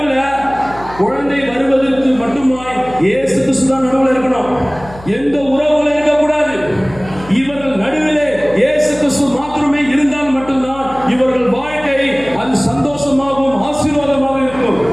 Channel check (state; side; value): noise; left; hum, 18 dB below the sound